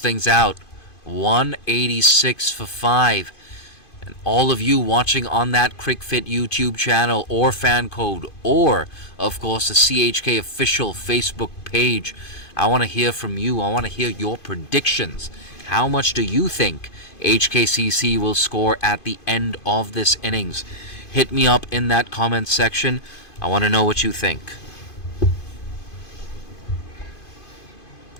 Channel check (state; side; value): late; right; 2.5 ms